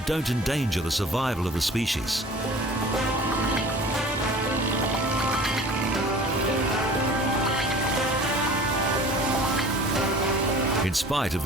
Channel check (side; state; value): both; normal; correlation 0.44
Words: don't endanger the survival of the species. In spite of